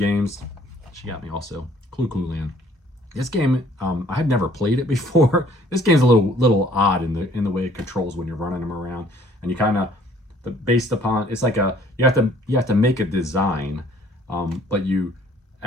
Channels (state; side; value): normal; both; correlation 0.59